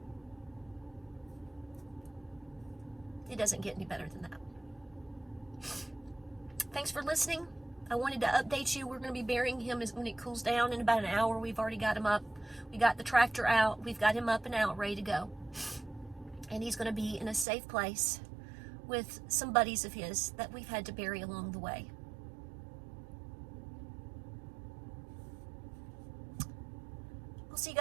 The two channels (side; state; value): left; drops out; at 17.4 s